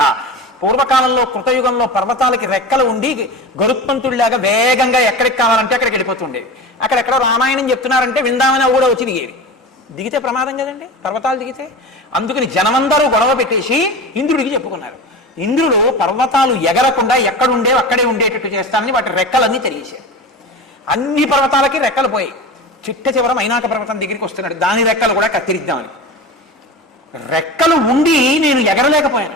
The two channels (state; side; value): normal; both; correlation 0.30